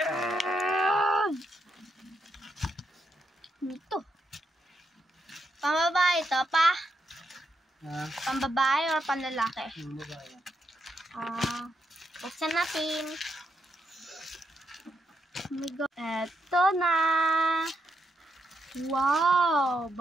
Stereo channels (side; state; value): both; normal; correlation 0.81